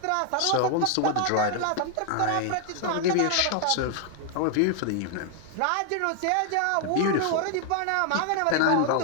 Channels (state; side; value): different; both; correlation 0.00